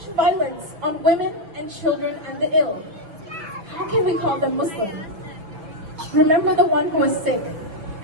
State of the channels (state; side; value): late; left; 6.5 ms